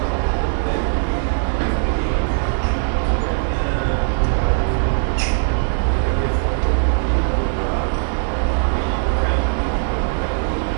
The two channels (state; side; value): silent; left; 66 dB below the other